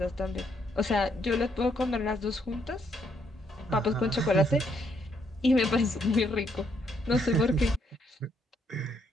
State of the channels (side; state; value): both; normal; correlation 0.73